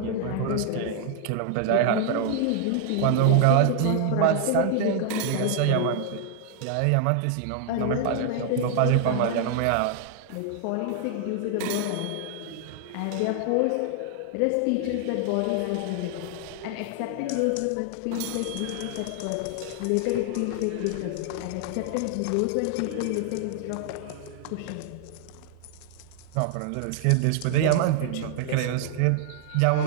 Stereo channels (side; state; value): both; different; correlation 0.00